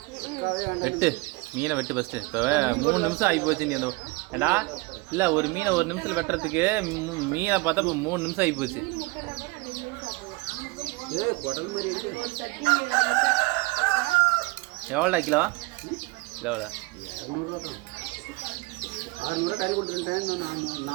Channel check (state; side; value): quieter; left; 24.0 dB